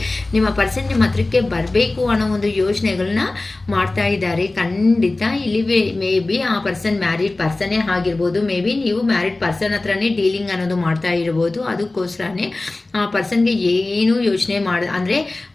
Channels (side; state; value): right; quieter; 3.0 dB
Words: ನಿಮ್ಮ ಪರ್ಸನ್ ನಿಮ್ಮ ಹತ್ರಕ್ಕೆ ಬರಬೇಕು ಅನ್ನೋ ಒಂದು ಯೋಚನೆಗಳನ್ನ ಮಾಡ್ತಾ ಇದ್ದಾರೆ. ಖಂಡಿತ ಇಲ್ಲಿ ಮೇ ಬಿ ಆ ಪರ್ಸನ್ ಮ್ಯಾರಿಡ್ ಪರ್ಸನ್ನೇ ಆಗಿರ್ಬೋದು, ಮೇ ಬಿ ನೀವು ಮ್ಯಾರಿಡ್ ಪರ್ಸನ್ ಹತ್ರನೇ ಡೀಲಿಂಗ್ ಅನ್ನೋದು ಮಾಡ್ತಾ ಇರ್ಬೋದು. ಅದಕ್ಕೋಸ್ಕರನೇ ಆ ಪರ್ಸನ್ಗೆ ಏನು ಯೋಚನೆ ಅಂದರೆ